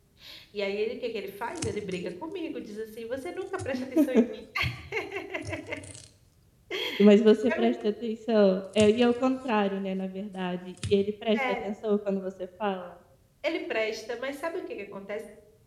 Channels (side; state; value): both; identical; correlation 1.00